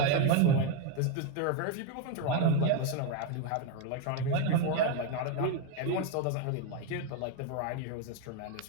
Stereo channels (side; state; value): both; different; correlation 0.01